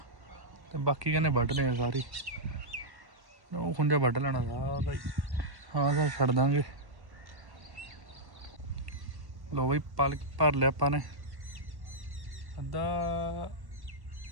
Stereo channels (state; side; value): late; left; 1.1 ms